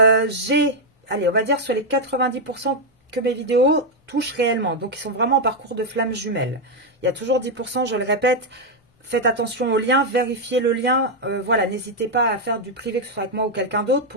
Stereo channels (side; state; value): both; normal; correlation 0.01